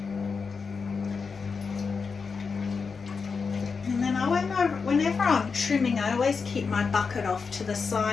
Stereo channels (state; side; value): quieter; right; 5.2 dB